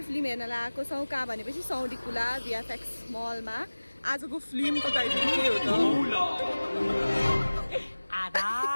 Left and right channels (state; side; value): inverted; both; correlation -1.00